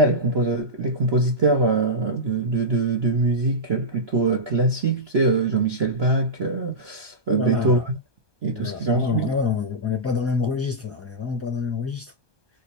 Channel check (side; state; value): left; late; 1.2 ms